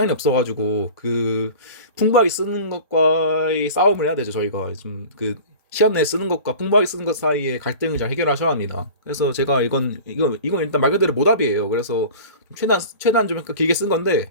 없어가지고 그 풍부하게 쓰는 것과의 싸움을 해야 되죠. 저희가 좀 그 시간 내에 쓰는 것과 풍부하게 쓰는 것 사이에 갈등을 잘 해결하셔야 합니다. 그래서 제가 이건 일단 말 그대로 모답이에요. 그래서 최대한 좀 길게 쓴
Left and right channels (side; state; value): both; inverted; correlation -0.38